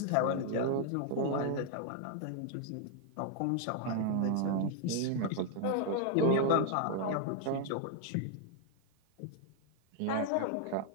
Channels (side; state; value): both; different; correlation 0.00